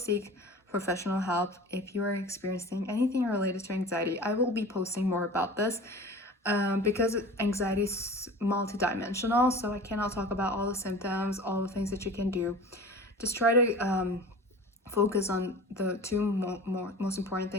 professional help if you are experiencing anything related to anxiety. I will be posting more about this because anxiety is multidimensional, so I cannot talk about all the symptoms, all the things that you can do. Just try to focus on the two most important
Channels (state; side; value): normal; both; correlation 0.38